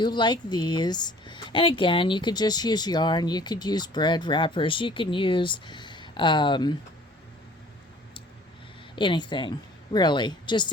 like these. And again, you could just use yarn, you could use bread wrappers, you can use anything, really,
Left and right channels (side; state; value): both; normal; correlation 0.51